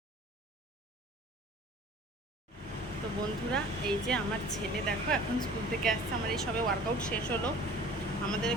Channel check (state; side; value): normal; both; correlation 0.46